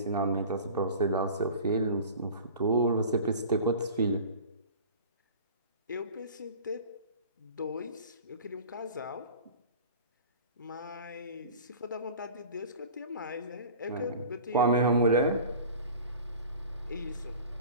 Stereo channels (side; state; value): both; inverted; correlation -0.40